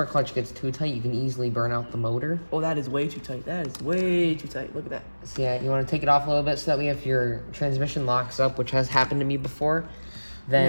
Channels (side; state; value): both; inverted; correlation -1.00